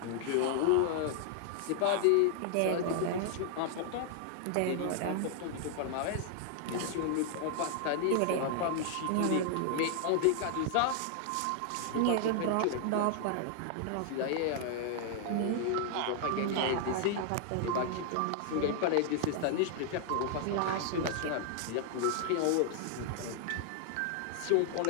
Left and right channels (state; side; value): different; both; correlation 0.00